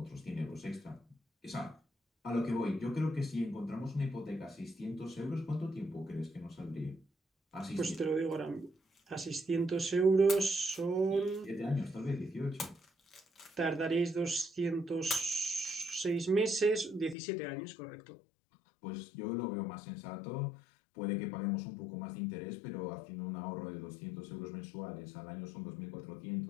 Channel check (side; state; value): right; drops out; at 17.2 s